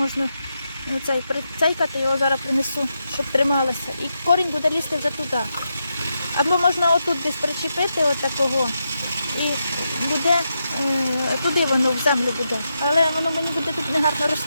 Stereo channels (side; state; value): both; inverted; correlation -0.85